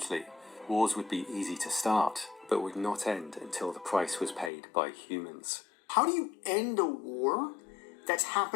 Wars would be easy to start, but would not end until the price was paid by humans. How do you end a war that's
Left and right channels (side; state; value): right; drops out; at 4.5 s